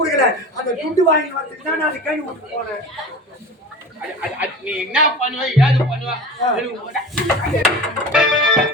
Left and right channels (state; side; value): normal; both; correlation 0.34